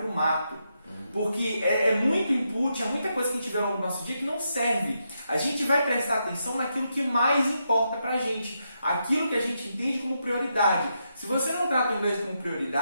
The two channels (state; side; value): inverted; both; correlation -0.83